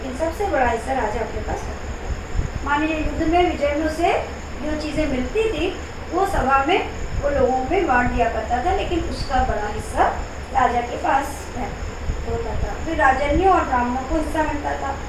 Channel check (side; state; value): both; identical; correlation 1.00